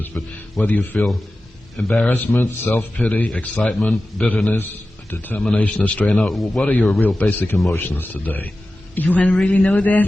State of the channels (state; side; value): normal; both; correlation 0.94